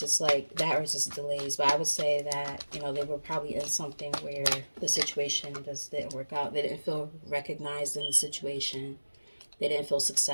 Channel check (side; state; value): both; inverted; correlation -1.00